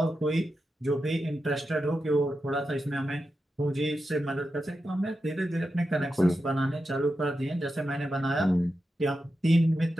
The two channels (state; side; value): normal; both; correlation 0.89